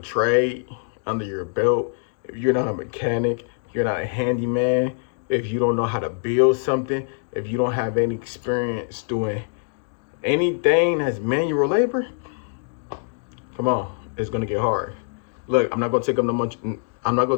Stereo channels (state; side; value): silent; right; 63 dB below the other